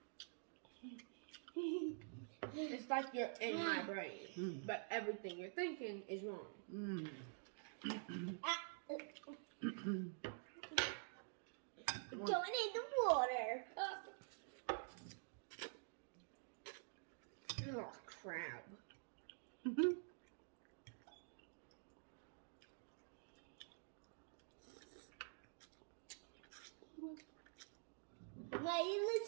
It's like you're in my brain, but everything you're thinking is wrong. Don't need the water. Oh, crap. Why you look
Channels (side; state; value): left; silent; digital silence